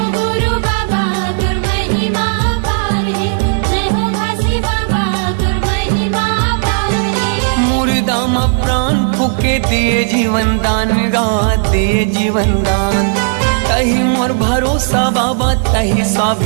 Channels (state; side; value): silent; left; digital silence